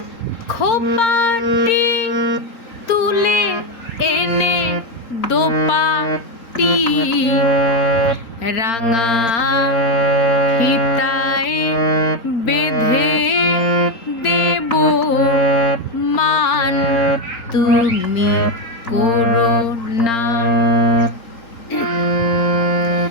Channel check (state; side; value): late; right; 4.4 ms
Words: খোপাটি তুলে এনে দোপাটি রাঙা ফিতায় বেঁধে দেব মান তুমি করো না।